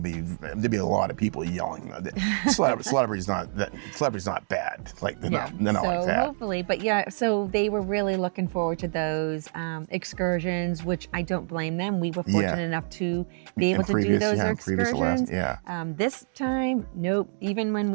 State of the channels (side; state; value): left; silent; digital silence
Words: be a lot of people yelling. Celebrity's not bad. Like they're not so like that. Hopefully, but yeah. So they were really looking forward to those excursions, which I don't blame them. We were fortunate enough to be able to do those excursions. This time, nope. Even when